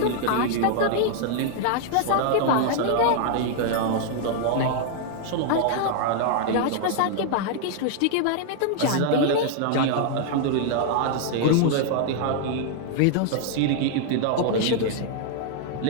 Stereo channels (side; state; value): both; different; correlation 0.00